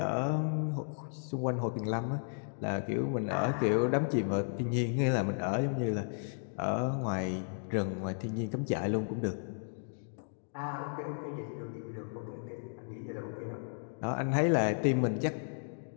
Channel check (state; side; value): silent; right; digital silence